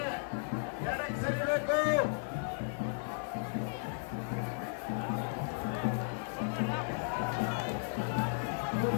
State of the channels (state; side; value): silent; right; digital silence